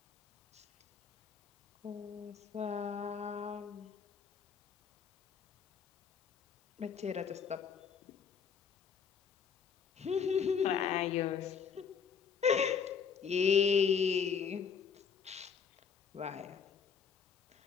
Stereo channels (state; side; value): quieter; right; 6.6 dB